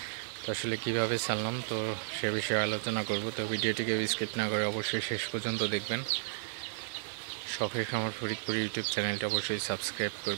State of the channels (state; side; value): silent; left; digital silence